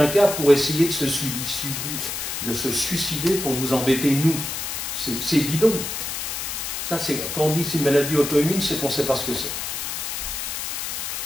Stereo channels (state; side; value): noise; left; hiss, 4 dB below the sound